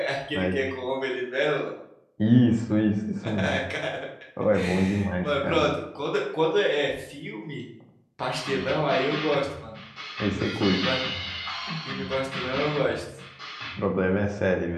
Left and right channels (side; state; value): both; identical; correlation 1.00